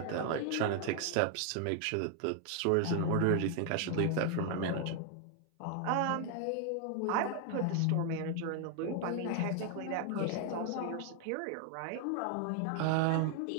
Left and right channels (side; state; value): both; different; correlation 0.00